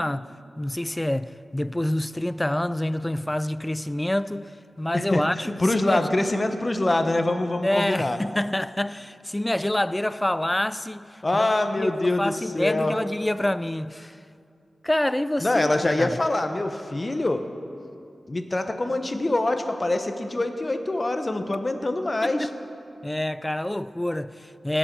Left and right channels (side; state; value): both; normal; correlation 0.98